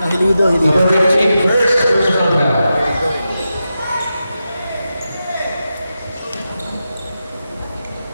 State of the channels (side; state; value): both; inverted; correlation -0.90